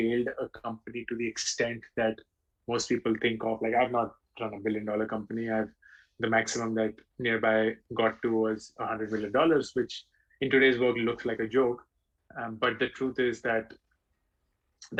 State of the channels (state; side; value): identical; both; correlation 1.00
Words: a company to the extent that most people think of. Like I've not run a $1 billion company. I've the maximum that nearby got to was $100 million, which in today's world looks like a joke. But the truth is that